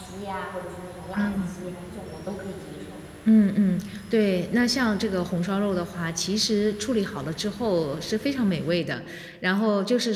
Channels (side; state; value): both; identical; correlation 1.00